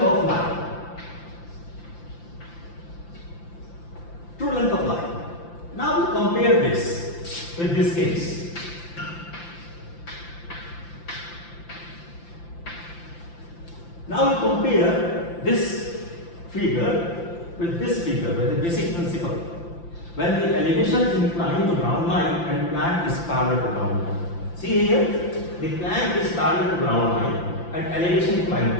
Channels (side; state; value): right; late; 5.8 ms